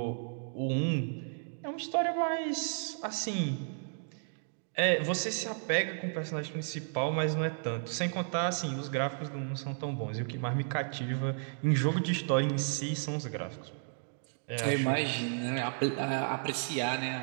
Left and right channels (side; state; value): left; silent; digital silence